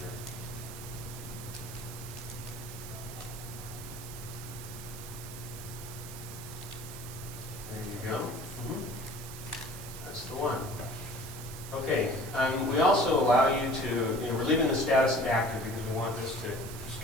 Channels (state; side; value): noise; right; hiss, 13 dB below the sound